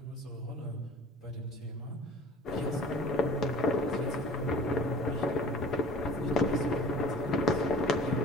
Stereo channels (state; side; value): normal; both; correlation 0.45